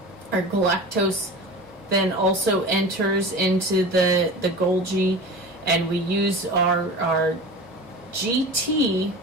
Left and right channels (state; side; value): normal; both; correlation 0.34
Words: Our galactose then also enters into the Golgi, and we use our GT,